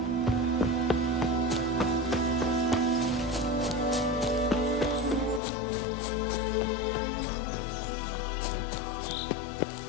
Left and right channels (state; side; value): drops out; right; at 5.4 s